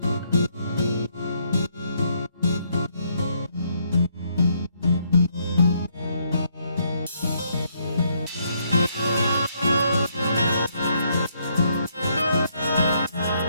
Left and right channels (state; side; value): inverted; both; correlation -0.72